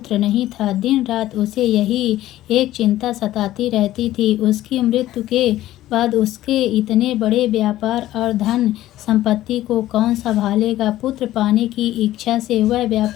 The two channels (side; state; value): right; quieter; 14.5 dB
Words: नहीं था। दिन रात उसे यही एक चिंता सताती रहती थी, उसकी मृत्यु के बाद उसके इतने बड़े व्यापार और धन संपत्ति को कौन संभालेगा। पुत्र पाने की इच्छा से वह